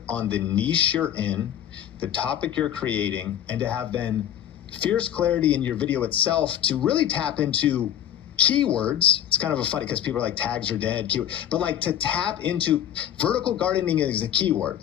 on the niche you're in, the topic you're creating, and to have then fierce clarity in your video itself to really tap into keywords. It's kind of a funny because people are like, tags are dead, but like to tap into vertical gardening is a keyword,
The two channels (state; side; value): quieter; right; 10.4 dB